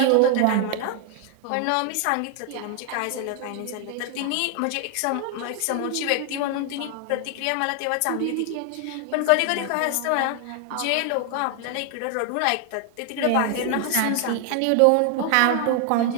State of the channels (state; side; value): different; both; correlation 0.00